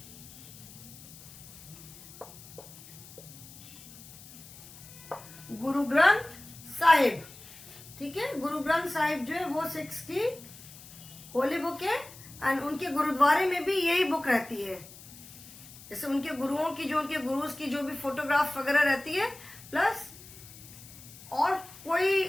गुरु ग्रंथ साहिब. ठीक है, गुरु ग्रंथ साहिब जो है वो सिक्स की होली बुक है. एंड उनके गुरुद्वारे में भी यही बुक रहती है. जैसे उनके गुरुओं की, जो उनके गुरुज की जो भी फोटोग्राफ वगैरह रहती है, प्लस और कोई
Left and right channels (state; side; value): noise; left; hiss, 18 dB below the sound